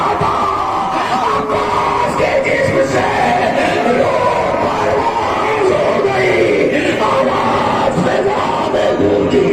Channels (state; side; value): identical; both; correlation 1.00